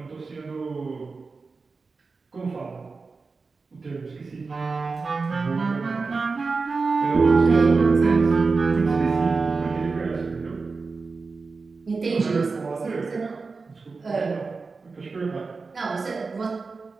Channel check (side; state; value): left; quieter; 4.3 dB